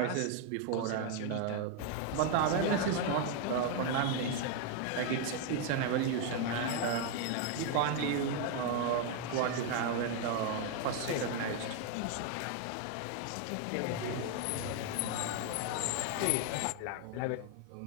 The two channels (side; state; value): both; different; correlation 0.01